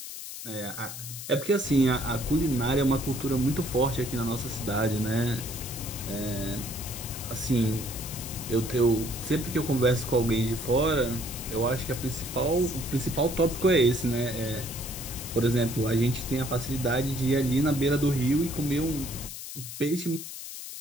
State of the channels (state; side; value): noise; left; hiss, 9 dB below the sound